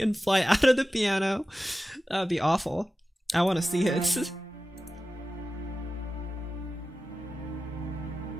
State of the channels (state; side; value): normal; both; correlation 0.94